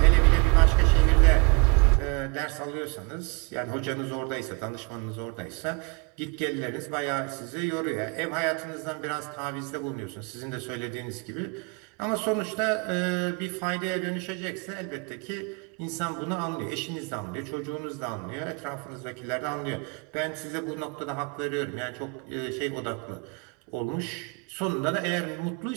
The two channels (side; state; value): left; quieter; 31.2 dB